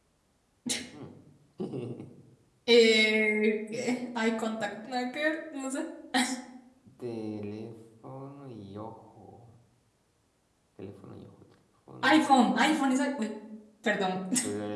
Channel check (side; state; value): both; identical; correlation 1.00